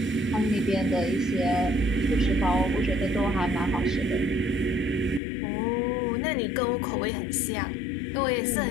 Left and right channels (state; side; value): drops out; right; at 5.2 s